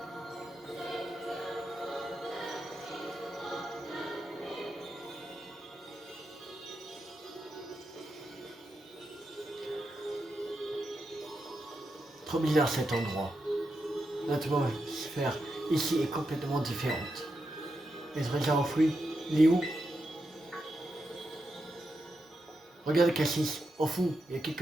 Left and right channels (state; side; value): normal; both; correlation 0.86